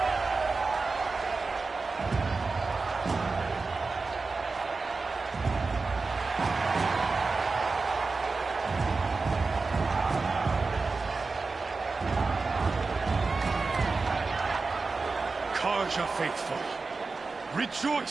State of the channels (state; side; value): quieter; left; 4.1 dB